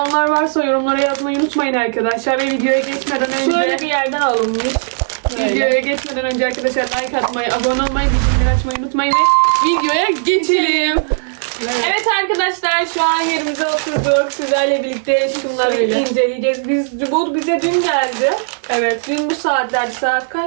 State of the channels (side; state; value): left; silent; 69 dB below the other